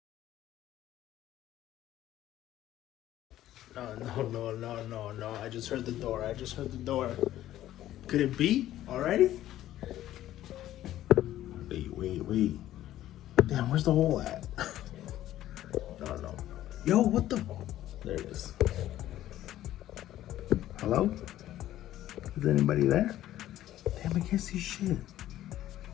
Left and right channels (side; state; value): right; quieter; 13.4 dB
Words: No, I just heard the door, Could it be already? Wait. Damn, where's the hole at? No. Yo, what the? There it is. Hello? Is anybody there? Damn, I can't see shit.